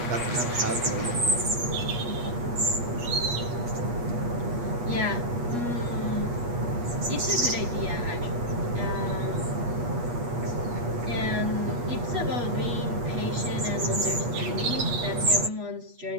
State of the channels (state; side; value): late; left; 8.3 ms